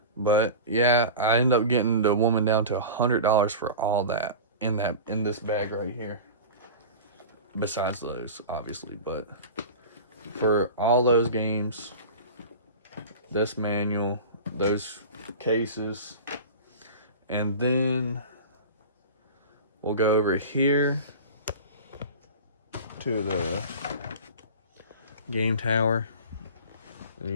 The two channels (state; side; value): inverted; both; correlation -0.33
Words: But yeah, I ended up getting the woman down to $100 for all that in this bag right here. Besides those, obviously, but for all those games, this manual, those cases, and then we'll go over here to the game tower, and